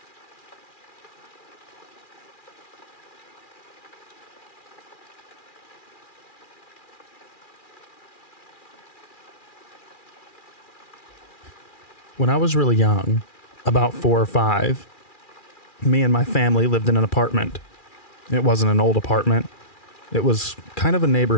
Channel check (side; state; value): right; late; 2.4 ms